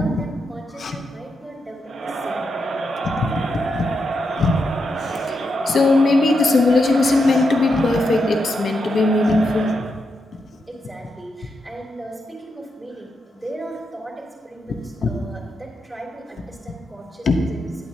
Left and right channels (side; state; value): both; normal; correlation 0.84